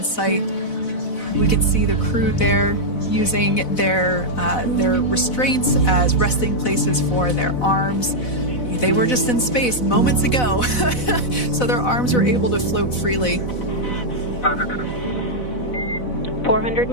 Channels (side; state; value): right; late; 4.0 ms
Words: site. We can see the crew there using their restraints as resting places for their arms. They were just in space moments ago, so their arms were able to float freely. 400